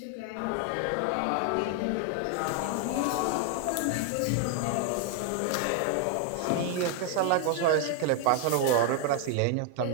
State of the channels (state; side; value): different; both; correlation 0.00